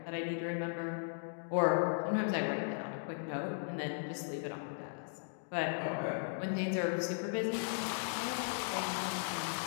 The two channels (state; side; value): silent; right; digital silence